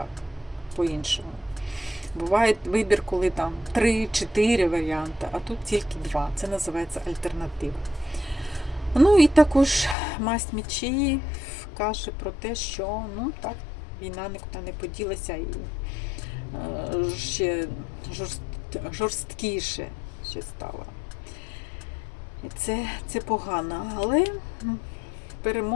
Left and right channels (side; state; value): right; drops out; at 10.0 s